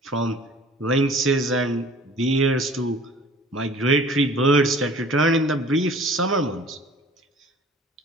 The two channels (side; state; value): both; normal; correlation 0.48